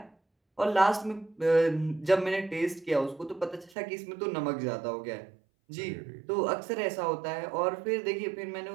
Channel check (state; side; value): drops out; left; at 3.8 s